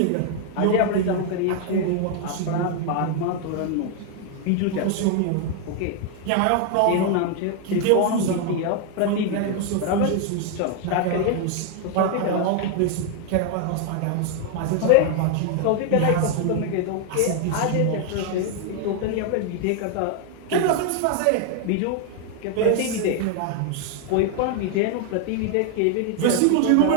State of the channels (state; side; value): different; both; correlation 0.00